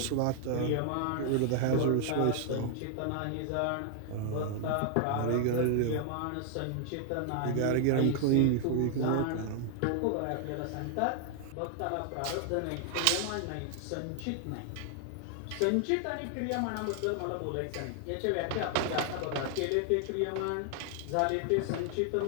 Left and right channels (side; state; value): both; different; correlation 0.00